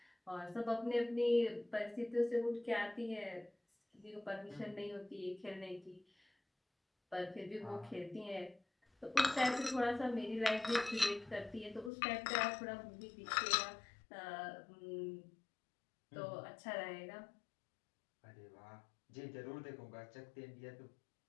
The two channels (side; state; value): right; drops out; at 11.9 s